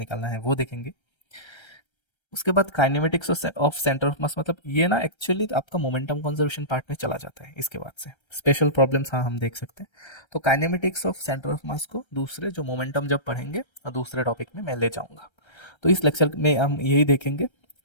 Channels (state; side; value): late; right; 1.3 ms